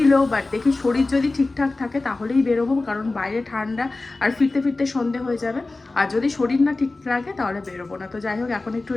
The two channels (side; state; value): right; quieter; 3.3 dB